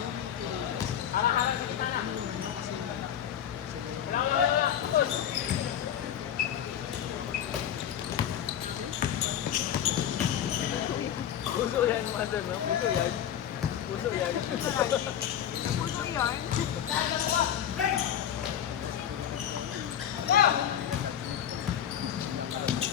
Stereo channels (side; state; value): right; quieter; 9.8 dB